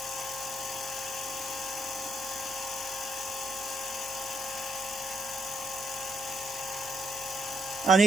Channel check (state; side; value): normal; both; correlation 0.78